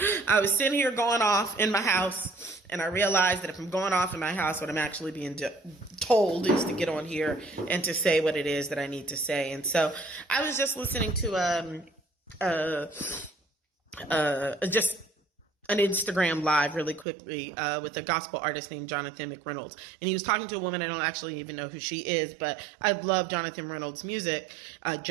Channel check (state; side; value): drops out; left; at 17.1 s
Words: was sitting here going off in my house, and I realized that if I'm going off in my house, what I'm actually being told is to get on here and to say what it is that I need to say. And so I was just listening to just an Instagram live really quickly with a gospel artist named Jonathan McReynolds. And he was talking to a woman. I don't actually even know who she is, but I love Jonathan Reynolds' music.